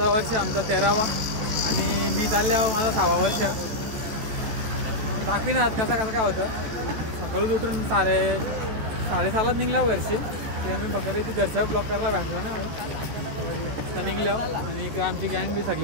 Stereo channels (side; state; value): left; late; 14 ms